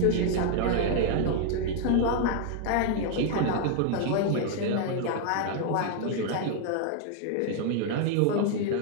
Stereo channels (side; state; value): both; different; correlation 0.00